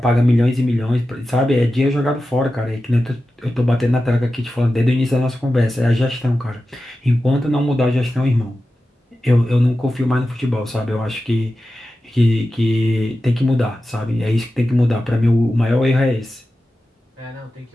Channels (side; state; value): both; normal; correlation 0.93